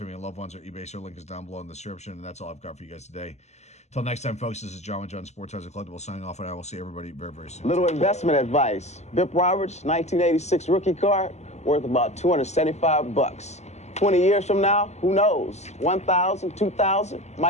and loved ones, or eBay. Our link is down below in the description. And that's all I've got for you guys today. Until next time, folks, this is John with John Sports House Collectible signing off, and I will see everybody very, very soon. Little investment advice. Bip Roberts, 1986 rookie card, worth about $275. 20 years from now, who knows? 1,000, 2,000,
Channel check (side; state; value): right; late; 0.33 ms